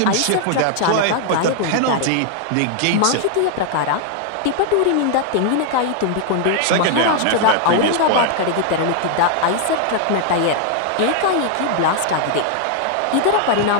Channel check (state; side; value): different; both; correlation 0.00